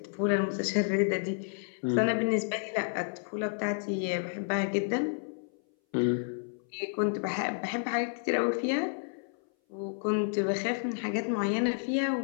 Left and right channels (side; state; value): right; silent; 57 dB below the other